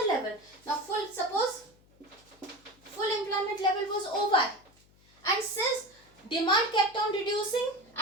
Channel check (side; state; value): left; noise; hum, 29 dB below the sound